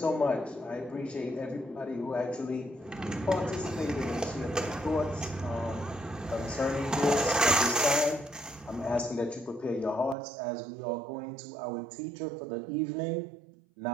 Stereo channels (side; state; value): left; drops out; at 10.2 s